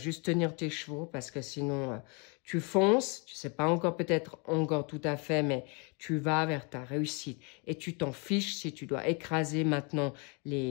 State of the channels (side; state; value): right; quieter; 33.6 dB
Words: tenir tes chevaux parce que sinon tu fonces, tu sais pas encore peut-être encore tout à fait, mais tu vas vers ta réussite. Et tu t'en fiches si tu dois écraser maintenant